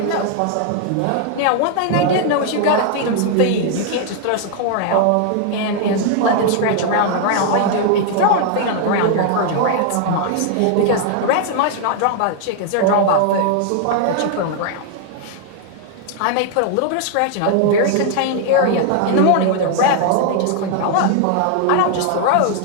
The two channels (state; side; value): different; both; correlation 0.00